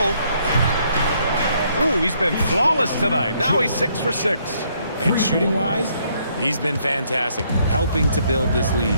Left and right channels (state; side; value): inverted; both; correlation -0.70